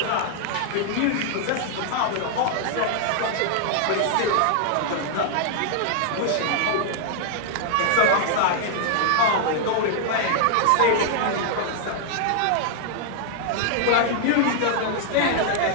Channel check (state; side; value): different; both; correlation 0.00